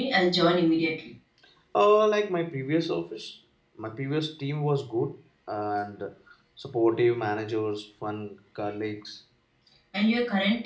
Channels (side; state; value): both; identical; correlation 1.00